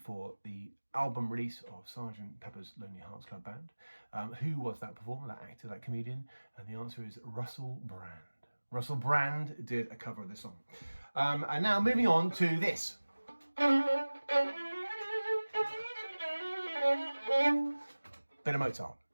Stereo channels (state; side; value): inverted; both; correlation -1.00